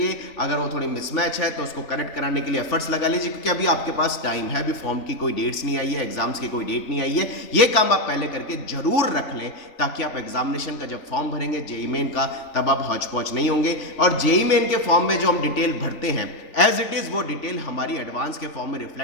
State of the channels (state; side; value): late; right; 3.4 ms